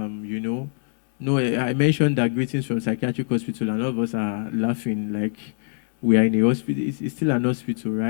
I mentioned that greetings from psychiatric hospital, and all of us are laughing like we are in a hospital. It's still an hospital,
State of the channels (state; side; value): silent; right; 63 dB below the other